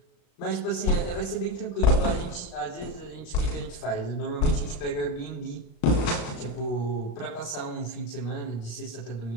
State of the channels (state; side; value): late; right; 35 ms